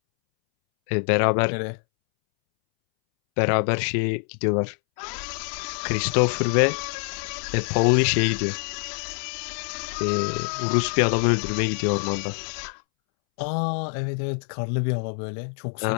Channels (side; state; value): right; silent; 62 dB below the other